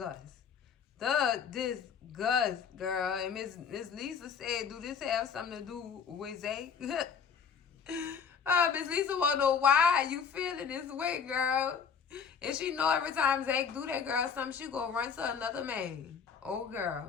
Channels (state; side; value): quieter; right; 6.6 dB